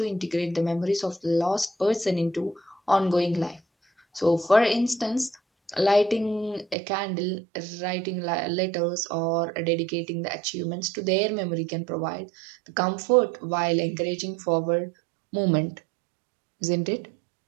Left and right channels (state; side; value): drops out; left; at 6.8 s